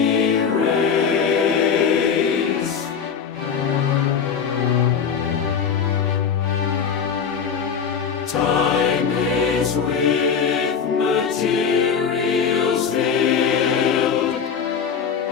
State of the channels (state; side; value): quieter; right; 6.8 dB